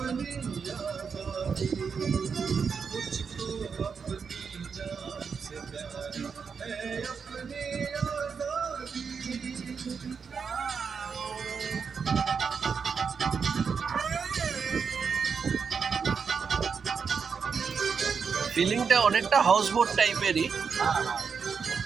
आजादी, मुझको अपनी जान से प्यारी है अपनी आजादी। ফিলিংটা অনেকটা হাউস বোট টাইপেরই।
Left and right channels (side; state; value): left; quieter; 6.0 dB